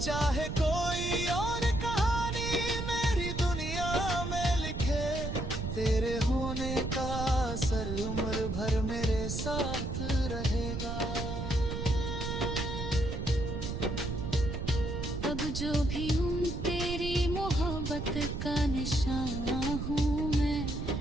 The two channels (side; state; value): right; noise; rumble, 4 dB below the sound